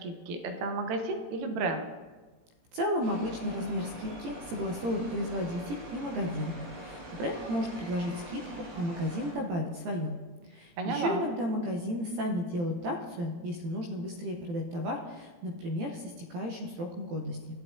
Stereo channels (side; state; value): left; late; 18 ms